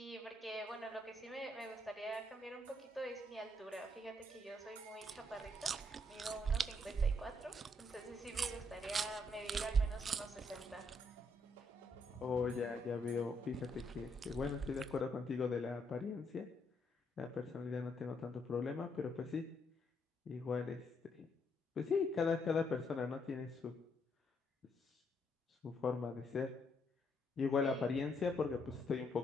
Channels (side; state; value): both; normal; correlation 0.74